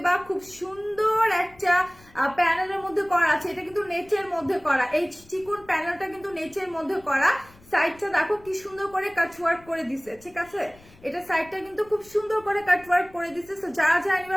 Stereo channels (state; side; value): noise; left; rumble, 25 dB below the sound